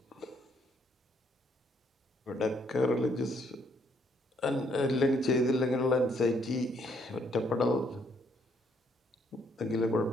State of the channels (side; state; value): both; normal; correlation 0.69